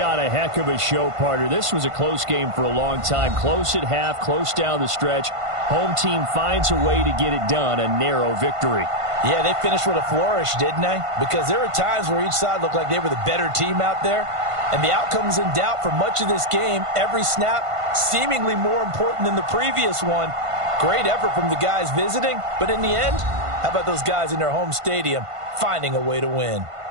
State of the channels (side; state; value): left; late; 1.5 ms